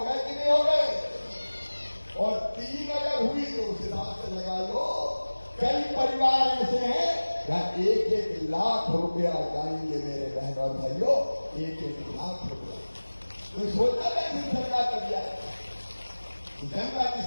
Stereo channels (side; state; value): both; inverted; correlation -1.00